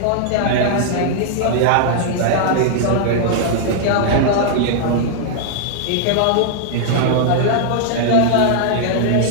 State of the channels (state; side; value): different; both; correlation -0.01